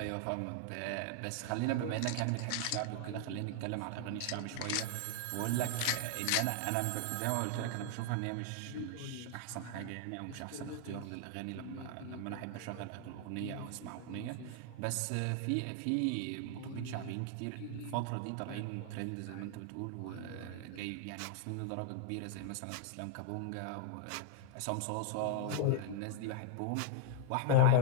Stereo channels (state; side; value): different; both; correlation 0.00